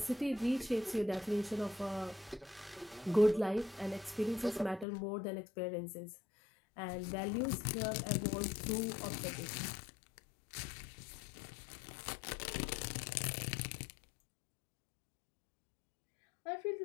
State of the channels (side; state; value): right; drops out; at 4.9 s